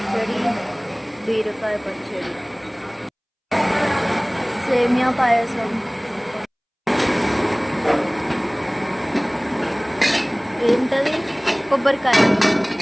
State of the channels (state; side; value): identical; both; correlation 1.00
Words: బీరకాయ పచ్చడి సేమియా పాయసం ఏంటది కొబ్బరికాయ